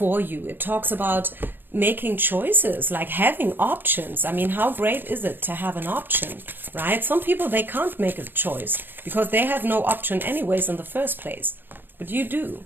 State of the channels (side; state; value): left; late; 0.096 ms